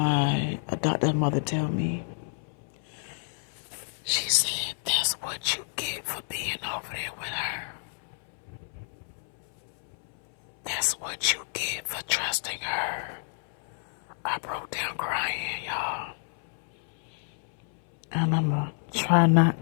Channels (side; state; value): right; silent; 59 dB below the other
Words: adoptive mother tell me. She said, that's what you get for being over there with her. That's what you get for trusting her. I broke down crying, y'all. And I'm going to try